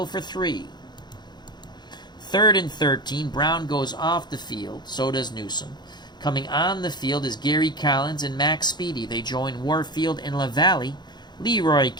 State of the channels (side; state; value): right; late; 0.21 ms